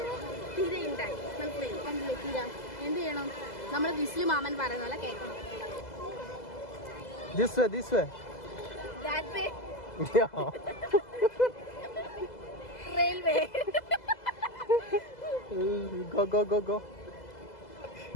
തിരയുണ്ടായി. മനസ്സിലായി? കണ്ടില്ലേ തിര? എന്ത് ചെയ്യണം? നമ്മൾ വിസിൽ മാമൻ പറയുന്ന പോലെ കേൾക്കണം. This way. That way. Yeah. Railway. Go.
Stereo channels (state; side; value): late; right; 2.0 ms